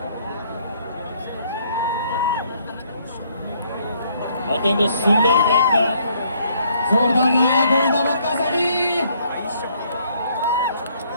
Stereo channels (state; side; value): inverted; both; correlation -0.66